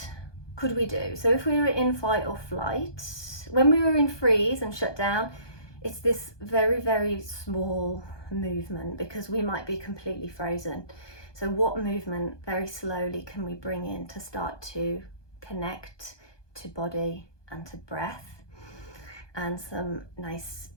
could we do? So if we were in fight or flight, when we were in freeze and shut down, it's this very, very small movement, because we might be completely frozen. So what movement very slowly can we bring in to start to connect to body and to breath? And some nice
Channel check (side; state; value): right; late; 1.2 ms